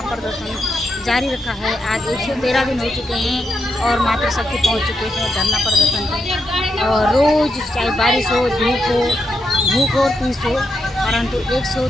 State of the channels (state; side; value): normal; both; correlation 0.84